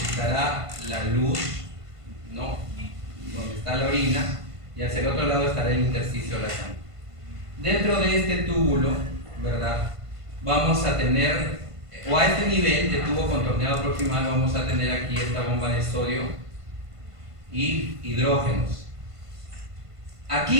la luz, ¿no?, donde está la orina, y hacia el otro lado estará el intersticio de la sangre. Dentro de este túbulo, ¿verdad?, vamos a tener, o a este nivel de tubo contorneado proximal, vamos a tener aquí esta bomba de sodio y hidrógenos.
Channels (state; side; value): late; left; 1.5 ms